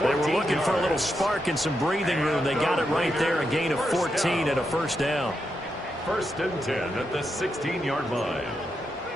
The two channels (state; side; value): normal; both; correlation 0.84